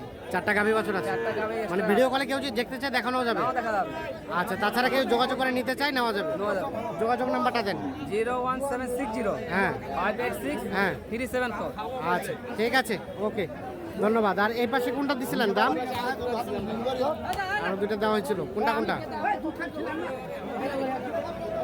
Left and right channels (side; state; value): both; identical; correlation 1.00